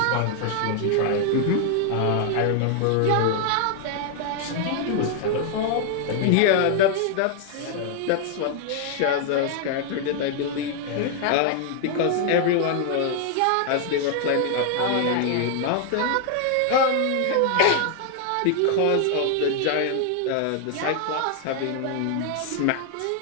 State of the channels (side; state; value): both; different; correlation 0.00